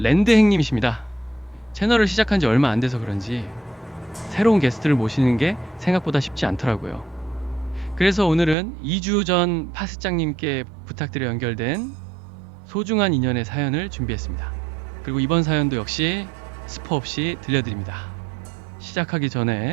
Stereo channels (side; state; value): left; drops out; at 8.6 s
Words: 채널을 시작한 지 얼마 안 돼서 그런지 새로운 게스트를 모시는 게 생각보다 쉽지 않더라고요. 그래서 오늘은 2주 전 파스장님께 부탁드려 연결된 소중한 인연의 사연을 준비했습니다. 그리고 이번 사연도 역시 스포 없이 들려드립니다. 시작하기